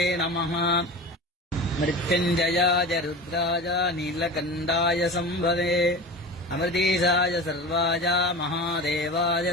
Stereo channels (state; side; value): normal; both; correlation 0.31